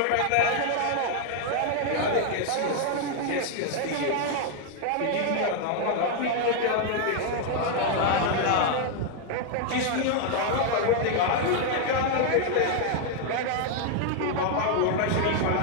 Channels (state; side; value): different; both; correlation 0.00